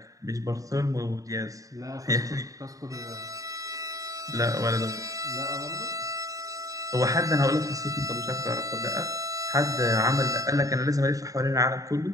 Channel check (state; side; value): late; left; 0.16 ms